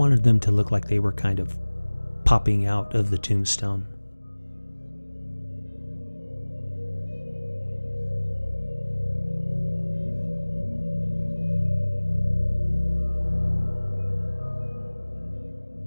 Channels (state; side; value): inverted; both; correlation -1.00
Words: them to look like they were kind of popping out of the tombstone.